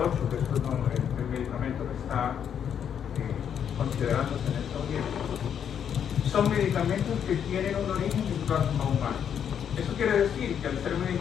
que es el medicamento que está considerándose en estos tiempos, son medicamentos que tienen un origen en plasma humano. Eso quiere decir que al ser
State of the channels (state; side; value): quieter; right; 8.5 dB